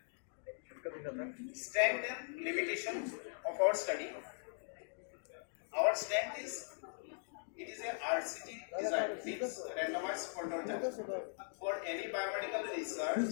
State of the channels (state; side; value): silent; right; digital silence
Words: Strength and limitation of our study. Our strength is it is a RCT design, means randomized control trial. For any biomedical research,